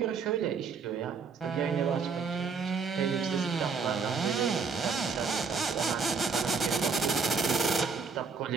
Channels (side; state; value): left; quieter; 5.1 dB